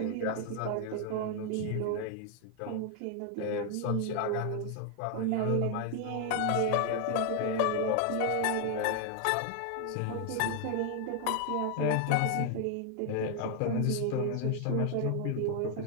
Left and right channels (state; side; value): different; both; correlation 0.00